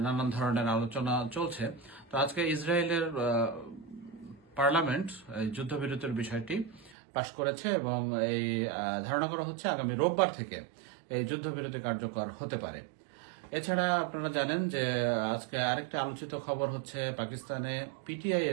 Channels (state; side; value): drops out; left; at 7.0 s